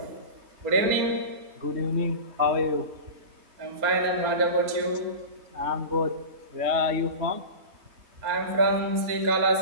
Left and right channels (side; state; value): left; late; 4.3 ms